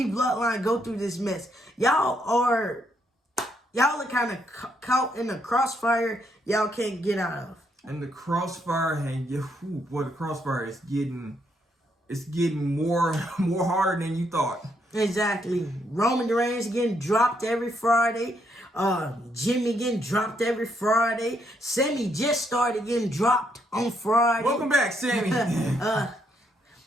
go through this mess. Y'all are kind of caught in a crossfire y'all can't get out of. And the crossfire, the crossfire is getting more harder than you thought. Exactly. Roman Reigns getting dropped every Friday. Jimmy getting dropped every Friday. Sami just started getting dropped on Friday. Welcome back, Sami.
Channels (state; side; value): normal; both; correlation 0.75